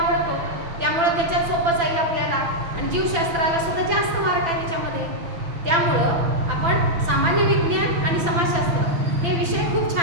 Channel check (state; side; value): late; left; 6.0 ms